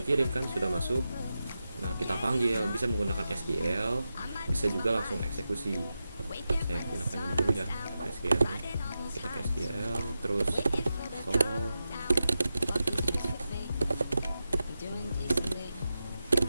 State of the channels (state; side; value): inverted; both; correlation -0.91